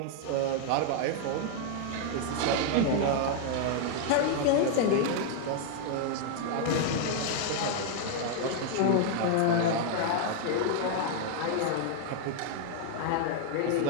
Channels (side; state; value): both; different; correlation 0.00